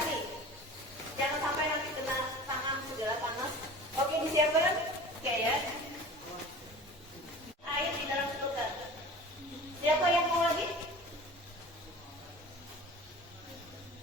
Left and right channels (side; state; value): both; normal; correlation 0.39